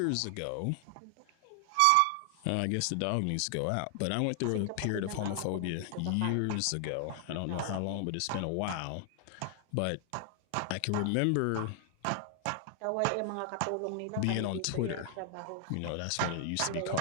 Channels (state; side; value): different; both; correlation 0.00